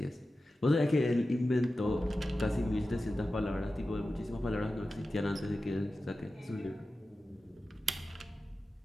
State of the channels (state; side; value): normal; both; correlation 0.94